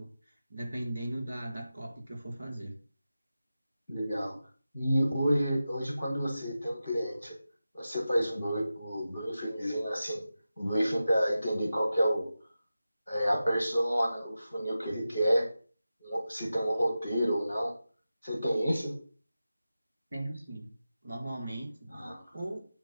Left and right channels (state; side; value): inverted; both; correlation -0.92